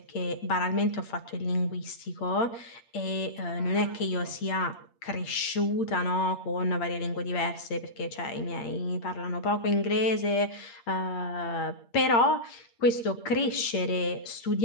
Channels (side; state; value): right; late; 8.7 ms